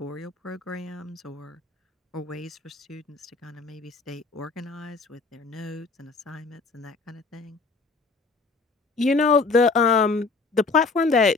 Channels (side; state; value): right; quieter; 4.1 dB